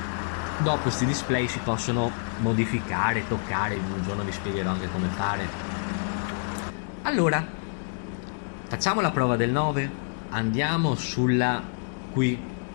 Dopo questi display si possono modificare, toccare, un giorno vi spiegherò anche come fare. Allora, facciamo la prova del 9. Andiamo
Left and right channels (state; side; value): silent; right; digital silence